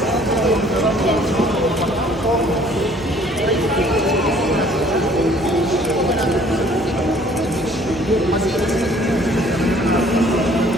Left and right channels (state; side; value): normal; both; correlation 0.56